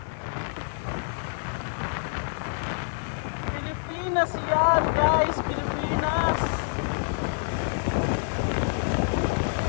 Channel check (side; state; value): right; silent; 60 dB below the other